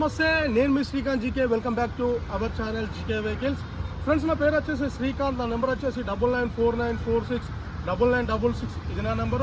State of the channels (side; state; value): both; identical; correlation 1.00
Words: నేను మీ Srikanth GK. Welcome back to our channel GK vehicles. Friends, నా పేరు వచ్చేసి శ్రీకాంత్. నా నెంబర్ వచ్చేసి 9949469966. ఇది నా